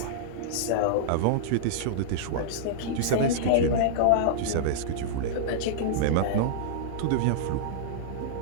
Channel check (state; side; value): different; both; correlation -0.02